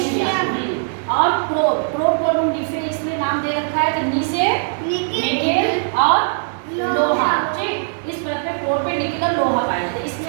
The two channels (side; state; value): left; silent; digital silence